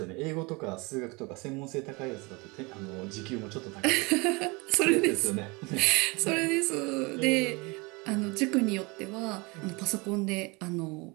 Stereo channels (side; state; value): left; quieter; 26.9 dB